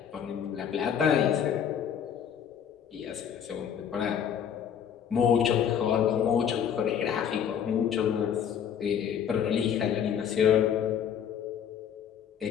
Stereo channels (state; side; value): quieter; right; 8.4 dB